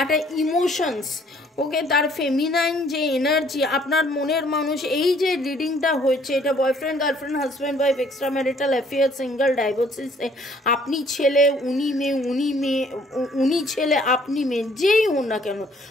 একটা ইমোশনস, ওকে, তার ফেমিনাইন যে এনার্জি, আপনার মনের মানুষ, এই যে রিডিংটা হয়েছে, এটা boyfriend, girlfriend, husband, wife, extra marital affair, single, divorcees, আপনি ছেলে, উনি মেয়ে, উনি ছেলে, আপনি মেয়ে, যেই হন না কেন,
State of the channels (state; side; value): normal; both; correlation 0.61